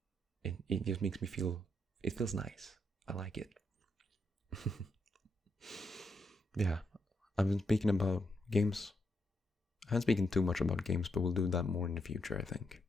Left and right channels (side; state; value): both; normal; correlation 0.79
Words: it just makes me feel, it feels nice. I like it. Yeah, I've been speaking about games. I haven't spoken too much about games, but we'll do that more in the future, I think.